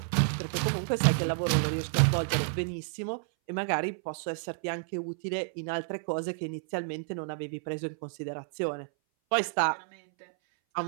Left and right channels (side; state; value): left; silent; 58 dB below the other